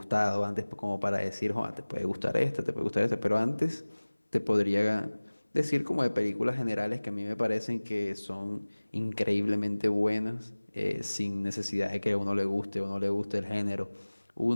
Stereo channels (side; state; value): both; inverted; correlation -1.00